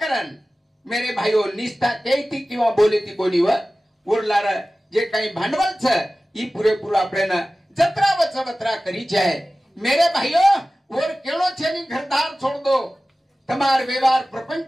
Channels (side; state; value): both; normal; correlation 0.96